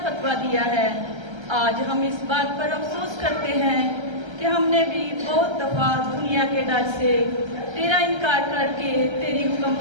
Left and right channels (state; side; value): late; left; 1.3 ms